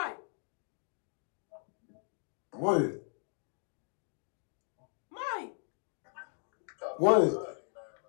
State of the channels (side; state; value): right; silent; 53 dB below the other